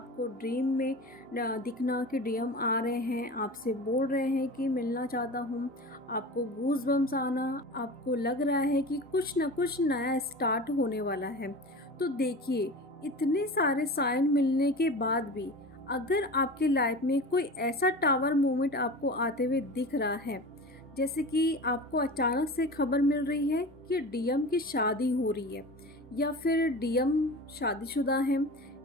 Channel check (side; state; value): both; normal; correlation 0.33